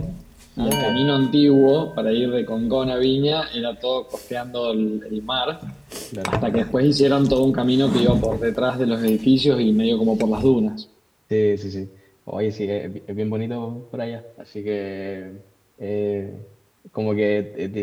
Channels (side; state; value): both; identical; correlation 1.00